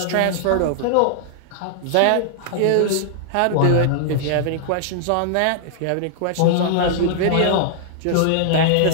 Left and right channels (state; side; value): different; both; correlation -0.01